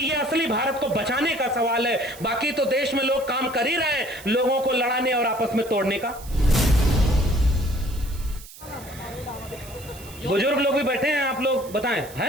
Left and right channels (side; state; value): right; noise; hiss, 18 dB below the sound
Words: असली भारत को बचाने का सवाल है। बाकी तो देश में लोग काम कर ही रहे हैं, लोगों को लड़ाने और आपस में तोड़ने का। बुजुर्ग लोग भी बैठे हैं, आप लोग बताएं, है